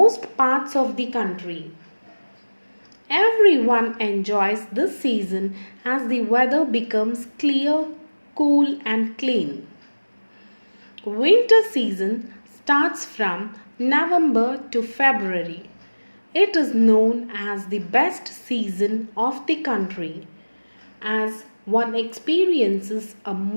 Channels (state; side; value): inverted; both; correlation -1.00